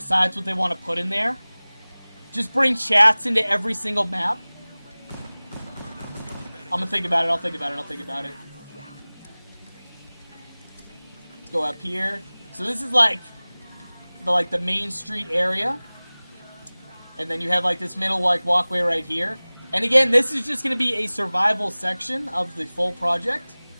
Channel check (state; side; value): inverted; both; correlation -1.00